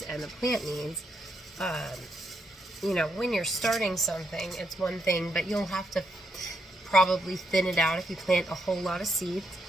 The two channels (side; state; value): both; normal; correlation 0.78